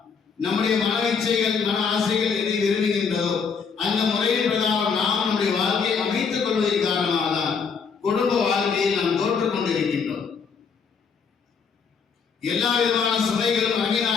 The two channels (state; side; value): quieter; right; 5.8 dB